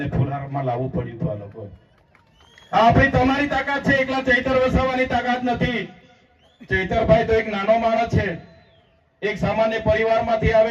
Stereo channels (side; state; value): both; identical; correlation 1.00